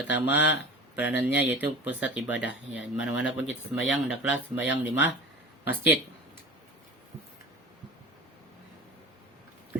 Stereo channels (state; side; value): normal; both; correlation 0.35